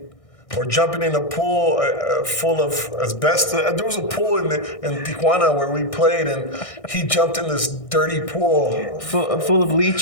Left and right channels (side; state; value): right; late; 1.6 ms